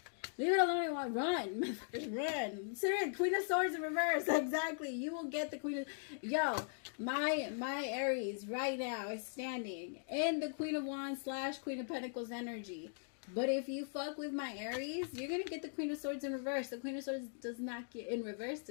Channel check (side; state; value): right; silent; digital silence